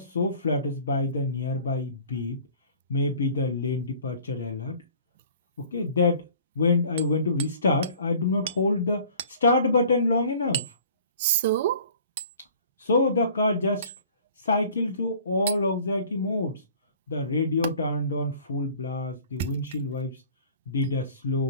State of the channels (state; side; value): inverted; both; correlation -0.50